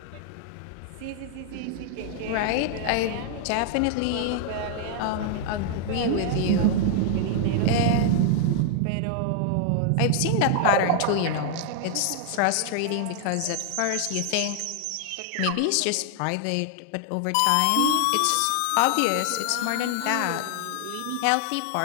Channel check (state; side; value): different; both; correlation 0.00